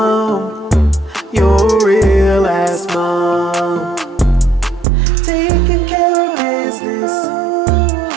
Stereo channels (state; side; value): drops out; left; at 4.9 s